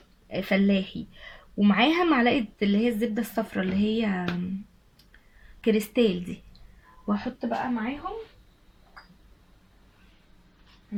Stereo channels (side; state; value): both; identical; correlation 1.00